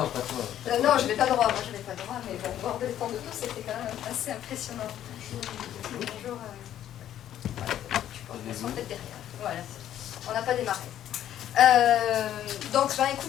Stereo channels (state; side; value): quieter; right; 11.3 dB